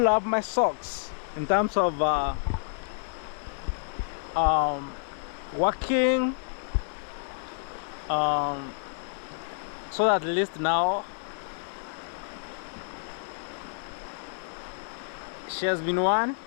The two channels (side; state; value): right; silent; 59 dB below the other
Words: up my socks in terms of working, so that at least now she has been 1,